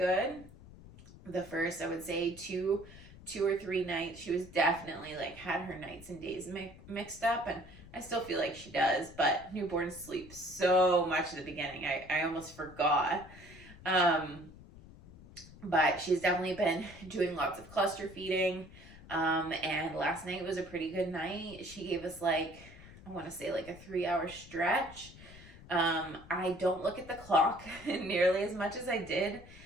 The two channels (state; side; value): noise; left; rumble, 19 dB below the sound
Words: The first, I would say, two or three nights, she was definitely like had her nights and days mixed up, and I still feel like she does, but newborns sleep so much at the beginning. I almost forgot. But she's definitely been doing lots of cluster feeding. And last night was a pretty good night. She gave us like, I want to say like a 3-hour stretch. I don't look at the clock nearly as much as I did